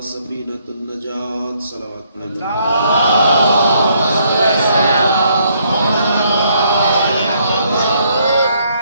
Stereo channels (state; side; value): inverted; both; correlation -0.70